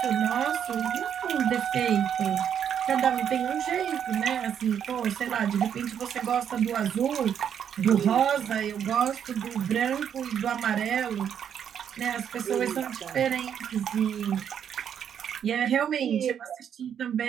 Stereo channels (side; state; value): left; quieter; 8.6 dB